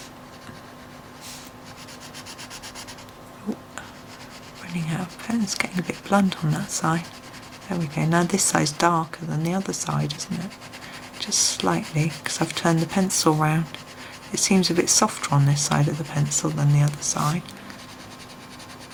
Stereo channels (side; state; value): both; identical; correlation 1.00